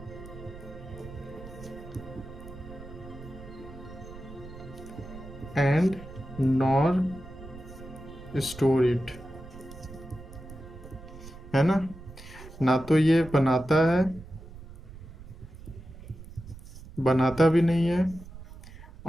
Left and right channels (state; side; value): noise; right; rumble, 16 dB below the sound